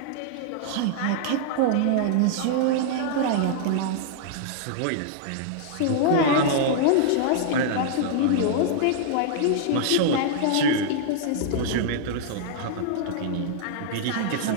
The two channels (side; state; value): both; different; correlation -0.01